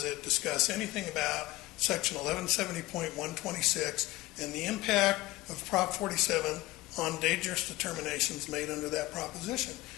it discuss anything about Section 1170.126 and the impact of Prop 47 on dangerous determinations made under that proposition.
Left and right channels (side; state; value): right; quieter; 18.9 dB